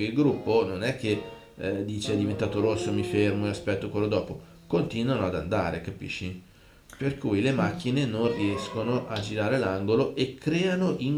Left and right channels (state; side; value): identical; both; correlation 1.00